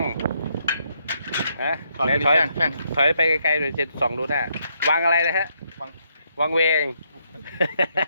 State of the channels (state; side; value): inverted; both; correlation -0.75